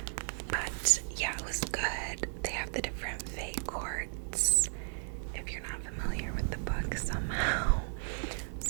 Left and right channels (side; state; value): left; silent; digital silence